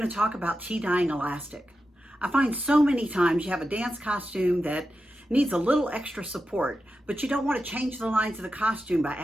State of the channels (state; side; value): normal; both; correlation 0.90